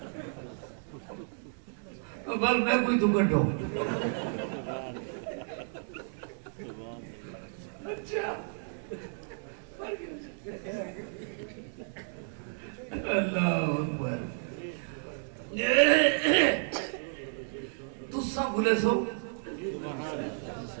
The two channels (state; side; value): silent; left; 56 dB below the other